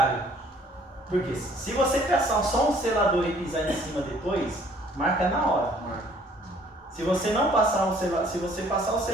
Porque se você passar só um selador e pisar em cima depois, marca na hora. Se você não passar se você passar o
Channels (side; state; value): both; normal; correlation 0.58